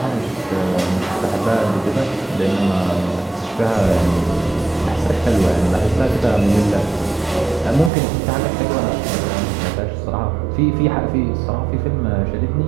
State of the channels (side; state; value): left; drops out; at 7.9 s